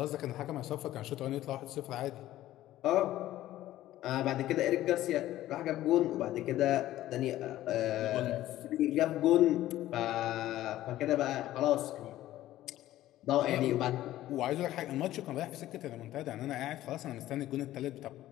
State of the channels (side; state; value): right; quieter; 14.4 dB